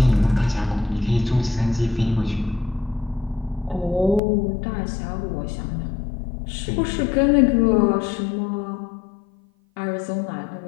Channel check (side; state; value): right; drops out; at 4.2 s